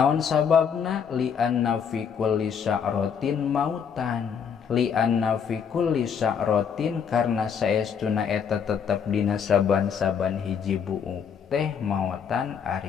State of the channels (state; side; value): quieter; right; 7.1 dB